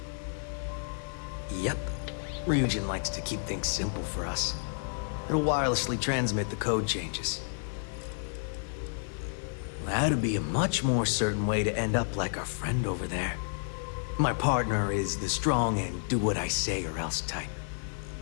Yep. Ryujin likes to keep things simple for us. It'll wirelessly transmit the code changes. That'd be a much more certain way to end up like our friend over there. My partner is the strong and do what I say or else type.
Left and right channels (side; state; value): right; silent; digital silence